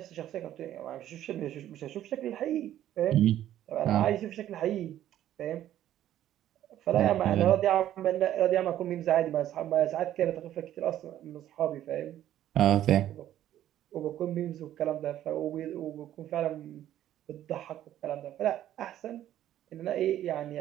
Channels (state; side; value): quieter; left; 12.2 dB